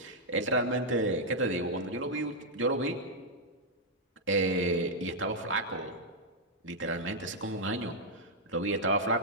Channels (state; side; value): normal; both; correlation -0.04